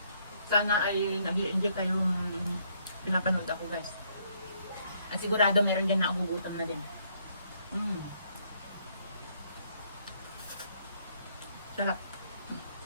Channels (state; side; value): inverted; both; correlation -0.69